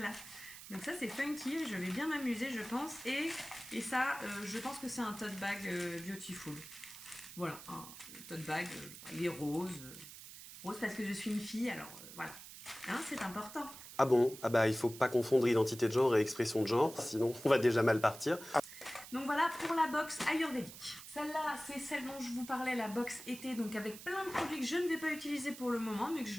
Donc ça c'est funky, je vais bien m'amuser je pense. Et ça, je pense que c'est un tote bag beautiful. Voilà, un tote bag, il est rose. Rose parce que je suis une fille, alors voilà. Hein, c'est important. Ah bon? Ah bah il faut pas confondre identité de genre et expression de genre, sinon on va déjà mal partir. Donc voilà pour la box ayurvédique. Celle-là, c'est celle dont je vous parlais, la box été, donc avec plein de produits que je ne vais pas utiliser pour le moment, mais que je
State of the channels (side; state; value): right; noise; hiss, 14 dB below the sound